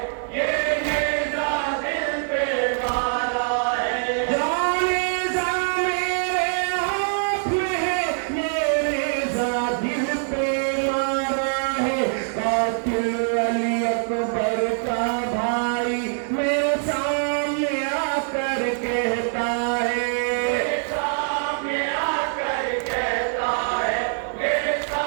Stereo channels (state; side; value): silent; left; digital silence